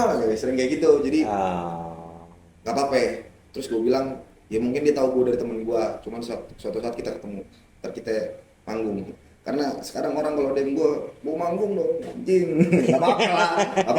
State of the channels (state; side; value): identical; both; correlation 1.00